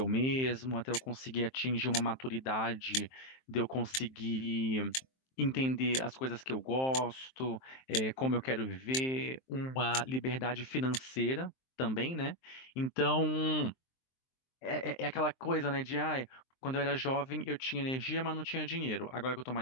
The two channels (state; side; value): late; right; 23 ms